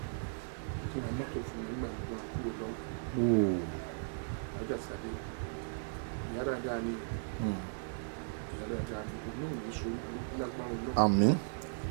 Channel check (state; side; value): silent; left; digital silence